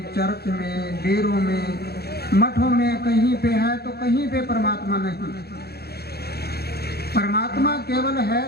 चर्च में, डेरों में, मठों में कहीं पे है तो कहीं पे परमात्मा नहीं। परमात्मा केवल है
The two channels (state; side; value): late; right; 0.46 ms